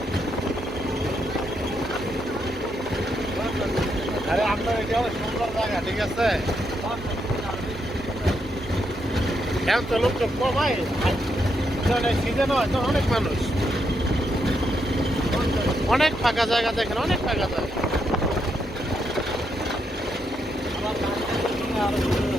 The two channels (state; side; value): normal; both; correlation 0.80